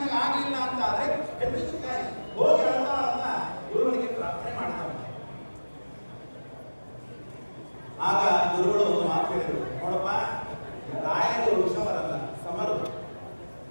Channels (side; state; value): both; inverted; correlation -1.00